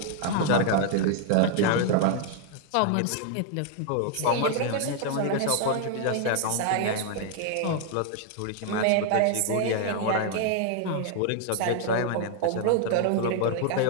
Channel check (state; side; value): different; both; correlation 0.00